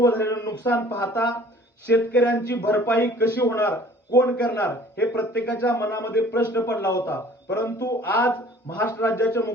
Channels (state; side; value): normal; both; correlation 0.51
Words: झालेलं नुकसान पाहता शेतकऱ्यांची भरपाई कशी होणार, कोण करणार हे प्रत्येकाच्या मनामध्ये प्रश्न पडला होता. परंतु आज महाराष्ट्र राज्याचे